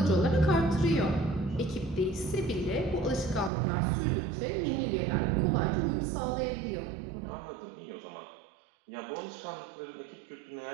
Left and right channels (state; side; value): drops out; left; at 3.5 s